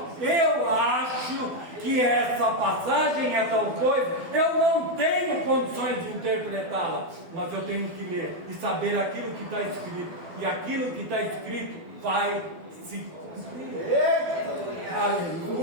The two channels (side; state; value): left; late; 12 ms